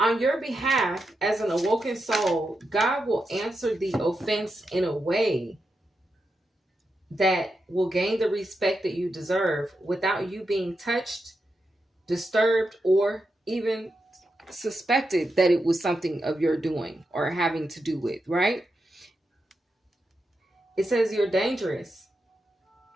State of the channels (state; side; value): normal; both; correlation 0.87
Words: your behalf, as an awoken soul, God will answer the offense in a way that will gain the respect that you deserve without you being touched, disturbed, or even suspected that it was something of your doing or having to do with, right? It says you're dangerous.